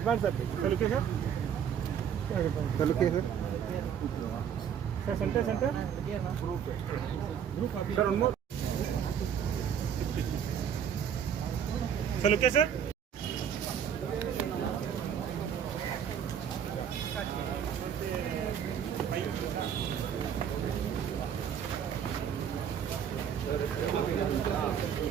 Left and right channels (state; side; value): quieter; left; 8.4 dB